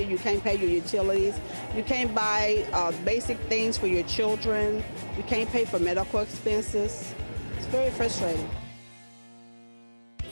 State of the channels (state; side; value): inverted; both; correlation -1.00